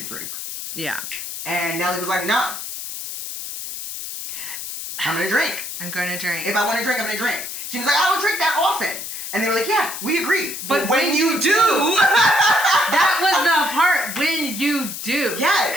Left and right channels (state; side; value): noise; left; hiss, 8 dB below the sound